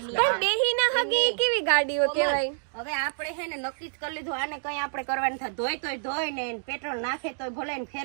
બેહી ના હગે કેવી ગાડીઓ કેવાય? હવે આપણે હે ને નક્કી જ કરી લીધું, આને કઈ આપણે કરવાનું થાય. ધોઈ તોય ધોઈ ને પેટ્રોલ નાખે તોય ભલે ને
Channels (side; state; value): left; silent; digital silence